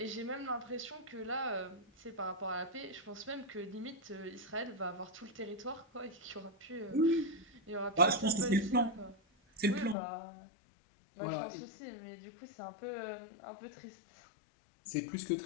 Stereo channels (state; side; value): drops out; right; at 10.0 s